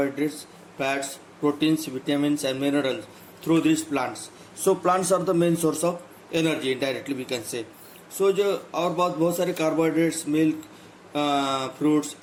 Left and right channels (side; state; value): both; identical; correlation 1.00